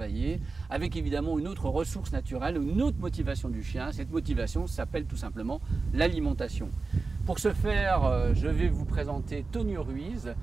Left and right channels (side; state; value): left; quieter; 4.0 dB